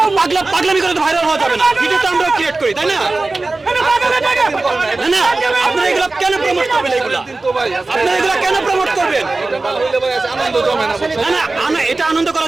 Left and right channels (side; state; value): left; quieter; 3.3 dB